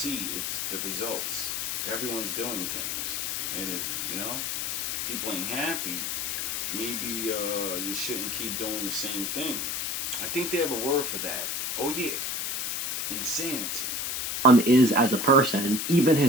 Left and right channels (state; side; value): noise; left; hiss, 1 dB below the sound